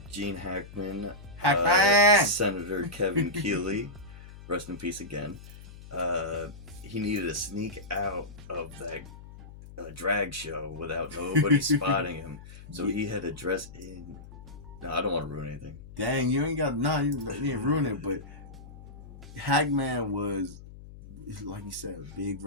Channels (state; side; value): noise; left; hum, 16 dB below the sound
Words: Gene Hackman, Senator Kevin Keeley, rest in peace again. He needed to sneak out of that drag show without nobody spotting him. So he had to dress in... No, I don't want to ruin anything. Dang, you ain't got... No, you didn't ruin it, but Hackman was, like you said, a big